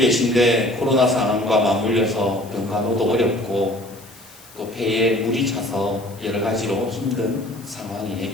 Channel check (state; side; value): noise; left; hiss, 22 dB below the sound